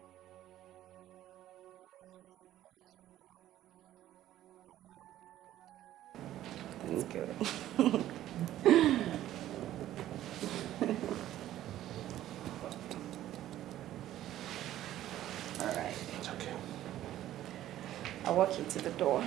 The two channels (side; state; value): left; quieter; 13.2 dB